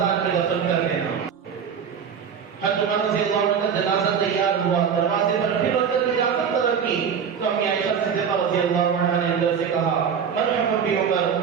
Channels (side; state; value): left; quieter; 7.2 dB